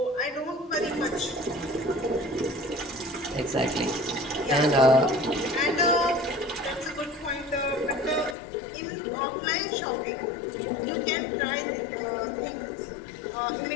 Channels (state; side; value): drops out; right; at 8.3 s